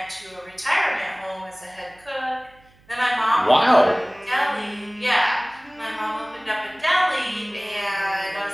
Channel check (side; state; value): right; noise; hum, 30 dB below the sound